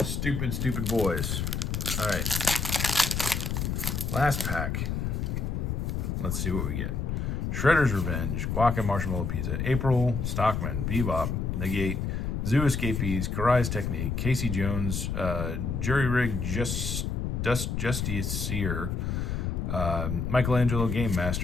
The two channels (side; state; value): left; noise; rumble, 1 dB below the sound